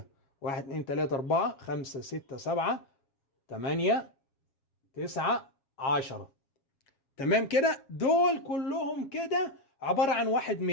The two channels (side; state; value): right; late; 7.4 ms